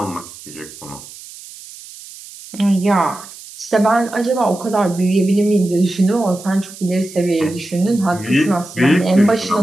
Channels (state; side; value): noise; right; hiss, 17 dB below the sound